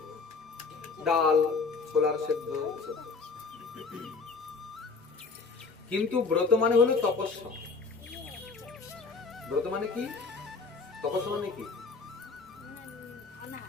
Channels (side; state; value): right; quieter; 4.5 dB